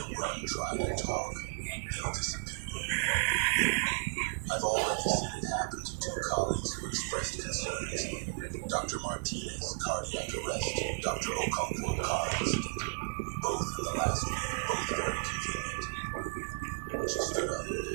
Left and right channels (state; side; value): silent; left; 55 dB below the other